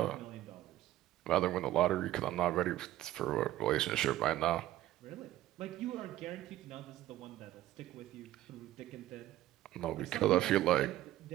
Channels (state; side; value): quieter; left; 14.4 dB